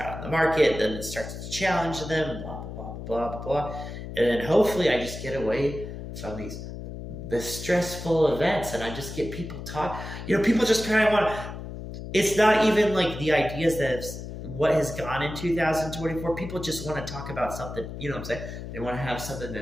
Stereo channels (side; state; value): left; noise; hum, 9 dB below the sound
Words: in the market, then it starts to challenge them, blah, blah, blah, blah, blah, blah. And then hopefully I just get away from the stressful events, and I just get people talk. People just kind of want to, it's not even like the ideas that what has gone in 2024. People just want to talk about something, you know what I'm saying? They want to have something